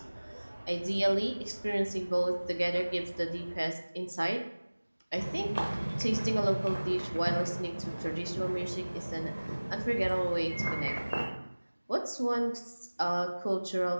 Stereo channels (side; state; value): both; inverted; correlation -1.00